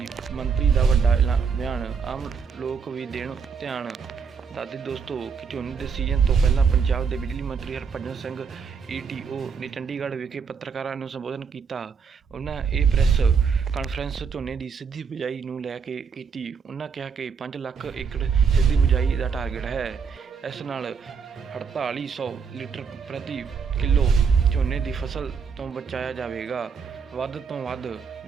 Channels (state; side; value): quieter; left; 6.0 dB